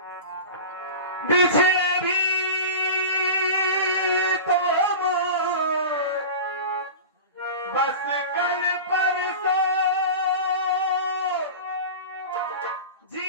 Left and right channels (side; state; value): both; inverted; correlation -0.31